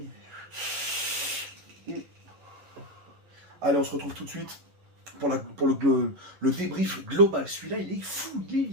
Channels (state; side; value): late; left; 11 ms